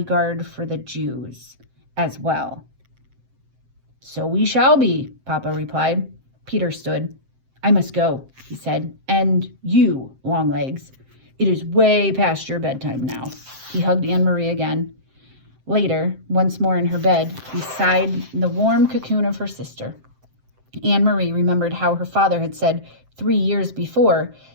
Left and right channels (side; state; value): left; late; 7.7 ms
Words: for the Jews as well. So we shall be, Papa replied. Peter stood. I must go, he said. And you, Longlegs. It is way past your bedtime now. He hugged Anne-Marie again. Later, once more in her bed, beside the warm cocoon of her sister, Anne-Marie remembered how her father had said 3 years before